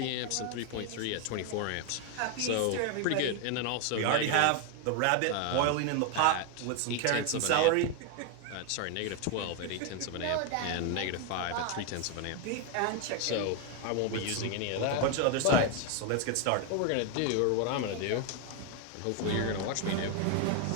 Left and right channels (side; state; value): both; different; correlation 0.01